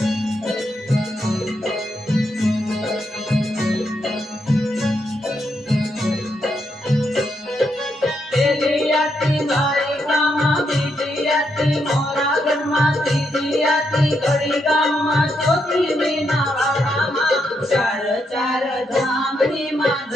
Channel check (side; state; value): both; normal; correlation 0.80